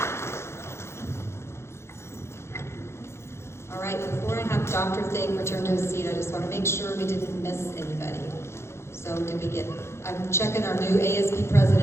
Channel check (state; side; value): late; right; 0.13 ms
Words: return to a seat, I just want to make sure we didn't miss anybody. So I'm checking our new ASB